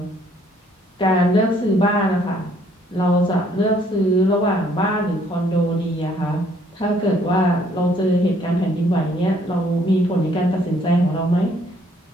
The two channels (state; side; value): normal; both; correlation 0.64